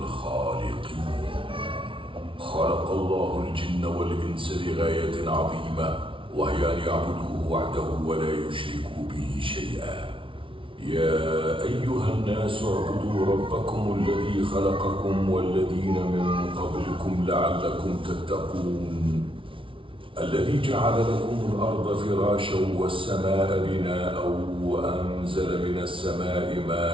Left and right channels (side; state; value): left; late; 0.25 ms